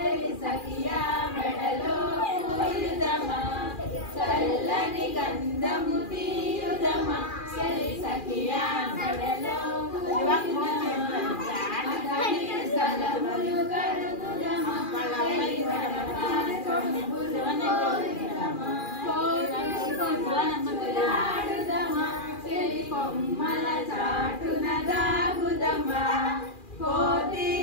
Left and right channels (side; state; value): right; late; 2.4 ms